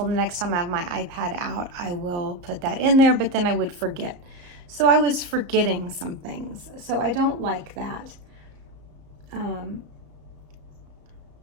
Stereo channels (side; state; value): left; late; 34 ms